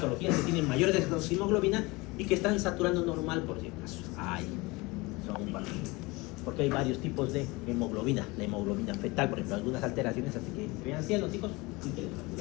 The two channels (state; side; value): quieter; right; 23.8 dB